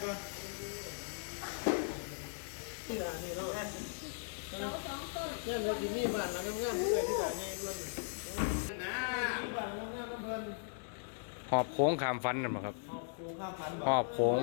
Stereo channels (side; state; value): right; silent; digital silence